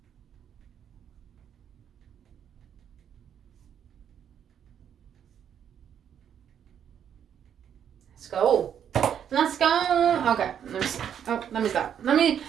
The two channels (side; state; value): left; quieter; 8.8 dB